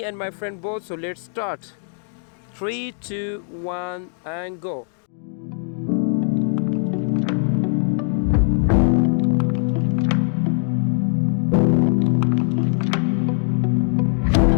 and my friend both. So let's start. 3, 2, 1 and go.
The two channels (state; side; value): silent; right; 59 dB below the other